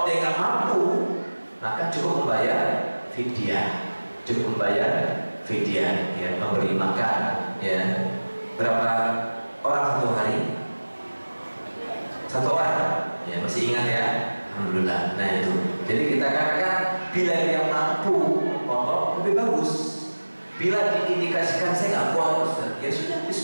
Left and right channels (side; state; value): both; inverted; correlation -1.00